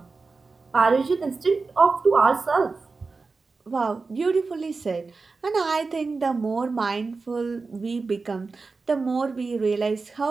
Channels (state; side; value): quieter; left; 4.1 dB